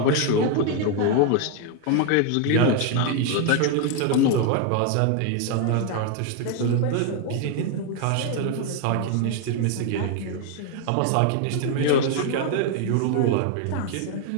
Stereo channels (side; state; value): both; different; correlation 0.01